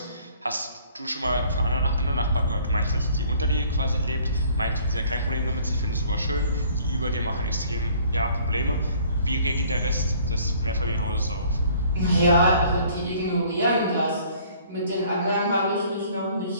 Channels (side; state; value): both; inverted; correlation -0.56